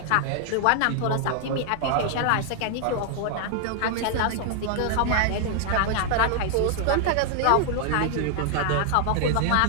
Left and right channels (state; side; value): different; both; correlation 0.00